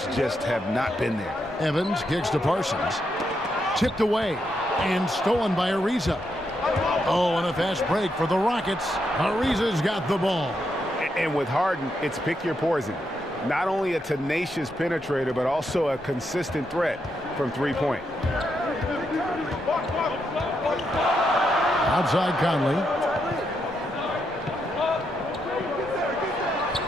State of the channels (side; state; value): both; normal; correlation 0.81